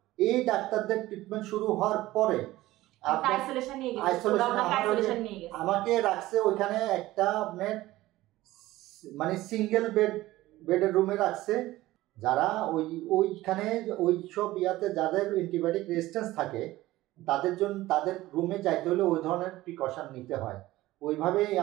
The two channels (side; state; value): left; quieter; 17.0 dB